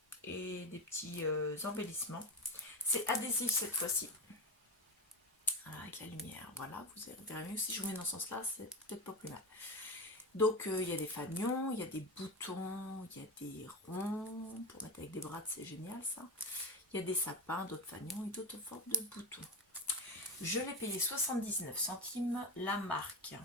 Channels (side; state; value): both; normal; correlation 0.20